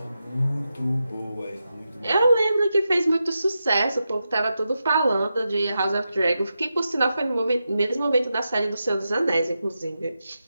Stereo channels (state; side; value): inverted; both; correlation -0.89